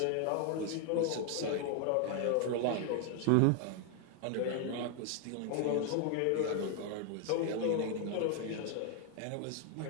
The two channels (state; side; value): different; both; correlation 0.00